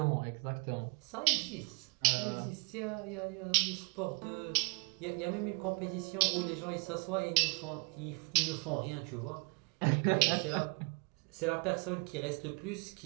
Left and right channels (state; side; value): quieter; left; 34.1 dB